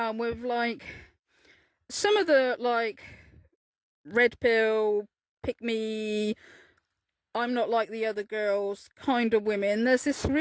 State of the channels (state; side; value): identical; both; correlation 1.00